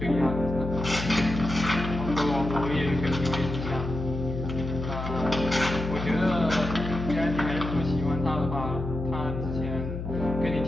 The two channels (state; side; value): noise; left; hum, 6 dB below the sound